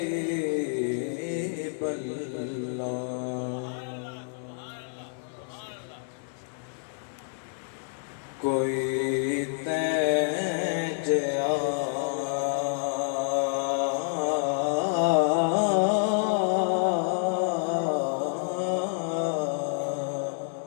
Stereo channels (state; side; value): silent; right; digital silence